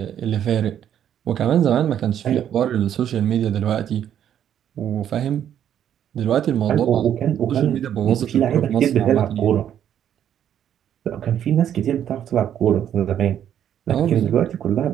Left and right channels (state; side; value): quieter; left; 9.9 dB